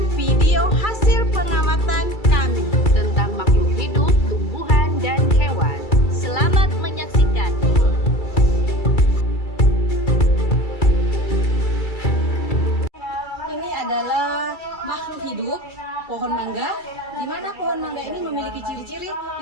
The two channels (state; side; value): late; right; 2.3 ms